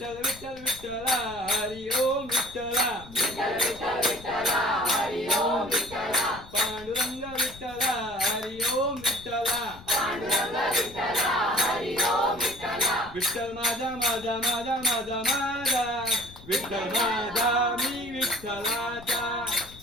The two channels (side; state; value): left; noise; rumble, 19 dB below the sound